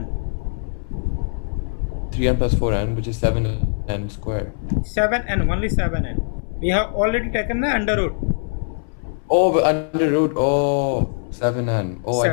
3n plus 4n, which is 7n squared. 7n, only 7n. We have already taken the under root. Oh, but under root. Oh, 7n. Oh,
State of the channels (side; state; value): right; silent; 61 dB below the other